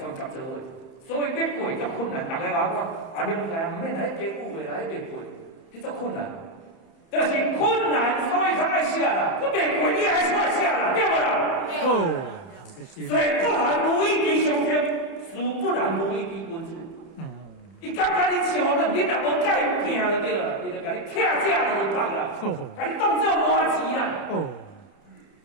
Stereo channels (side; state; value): right; late; 30 ms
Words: 做伙。所以要过足困难，大家甲我讲，啊，了解，免来加5个来别过，迄足困难。就是困难，所以他爱写啦。我袂过，你还出来写啦，对不啦？哦，水不含无一滴上天，水不染无一滴君子。伊感觉你像恁，你若无甲伊拼就对了，伊就甲你拆价就放啦，甲你当做麻钱啦。哦，